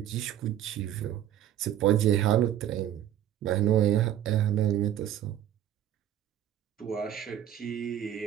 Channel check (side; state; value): left; quieter; 11.2 dB